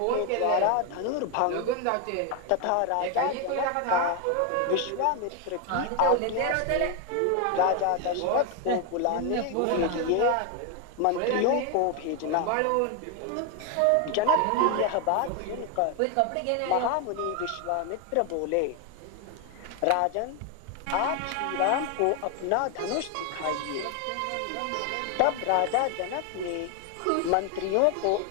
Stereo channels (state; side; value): different; both; correlation 0.01